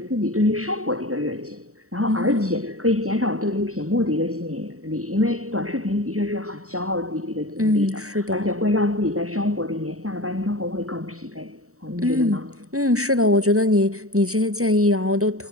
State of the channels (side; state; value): left; late; 0.64 ms